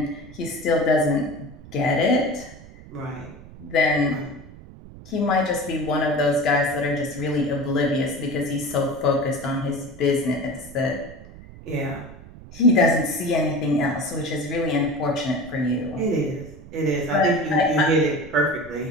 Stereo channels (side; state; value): right; noise; rumble, 18 dB below the sound